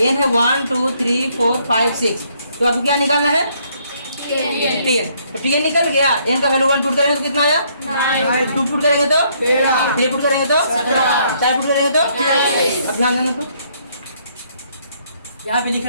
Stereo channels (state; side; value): inverted; both; correlation -0.68